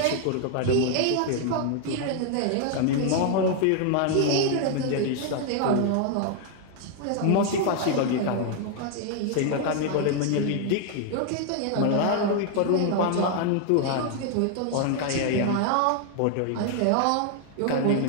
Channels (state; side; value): different; both; correlation 0.00